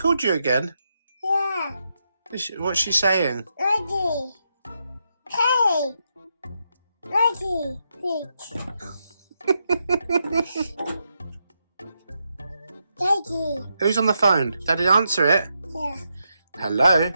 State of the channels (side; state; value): both; inverted; correlation -0.83